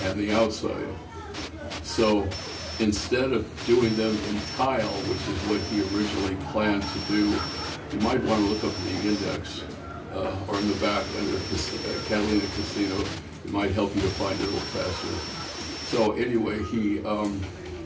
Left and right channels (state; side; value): identical; both; correlation 1.00